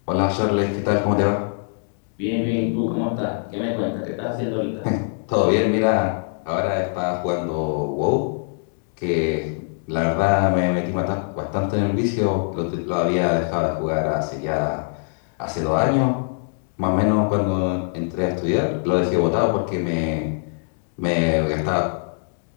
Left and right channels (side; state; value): right; silent; digital silence